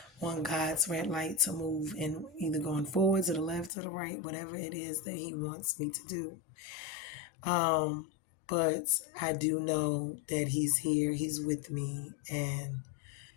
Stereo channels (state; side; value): drops out; right; at 3.7 s